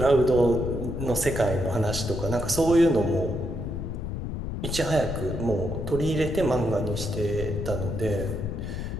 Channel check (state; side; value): noise; left; rumble, 5 dB below the sound